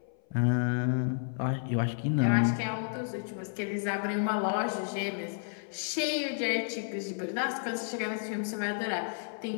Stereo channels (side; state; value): right; silent; 55 dB below the other